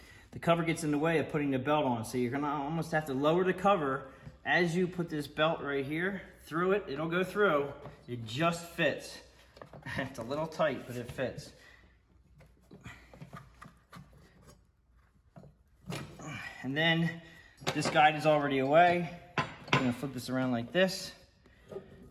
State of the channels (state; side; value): identical; both; correlation 1.00